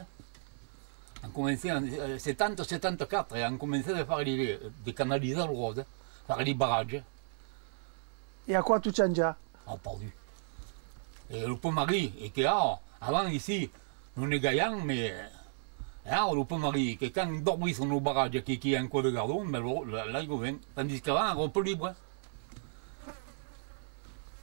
On commençait en 70, 74, et on commençait à faire des canaliser le rose, faire les barrages. Et à quoi tout change? Ah, perdu. Et le pont Marie, et que avant ici, non est gaillant, mais on peut marier que quand on dormit sur nos barrages qui est un coin de gardon, mais là il vient. Tandis qu'avant, on peut libre.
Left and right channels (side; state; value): left; silent; 55 dB below the other